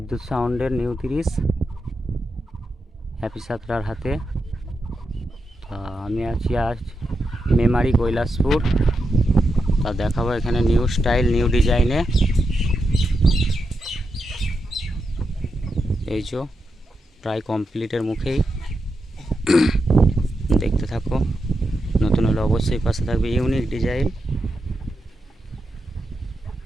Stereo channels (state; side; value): normal; both; correlation 0.86